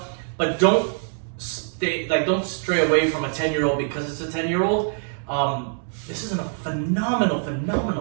but don't stray away from a 10-year-old because it's a 10-year-old. This is a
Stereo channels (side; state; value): left; silent; digital silence